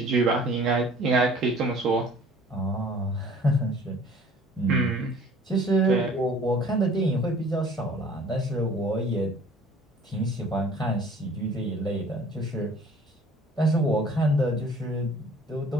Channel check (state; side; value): normal; both; correlation 0.51